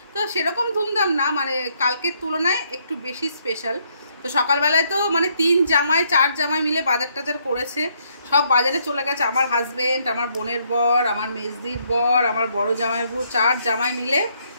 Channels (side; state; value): both; inverted; correlation -0.72